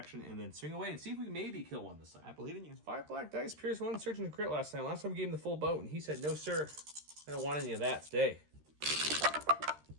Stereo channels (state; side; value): late; left; 13 ms